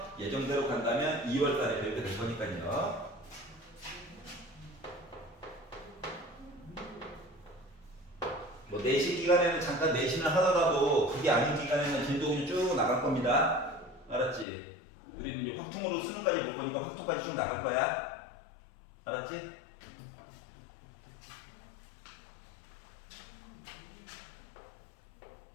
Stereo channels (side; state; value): right; drops out; at 14.5 s